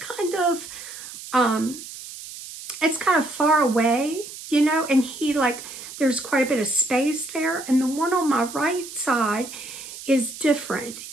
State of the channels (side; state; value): right; noise; hiss, 13 dB below the sound